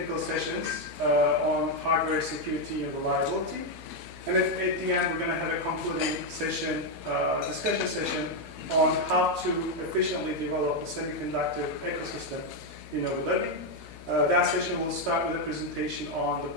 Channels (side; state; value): left; noise; hum, 17 dB below the sound